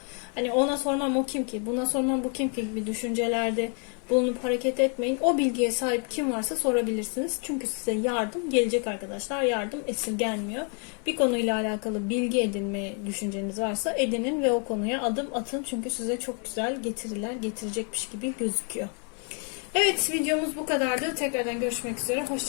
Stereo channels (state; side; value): quieter; right; 39.7 dB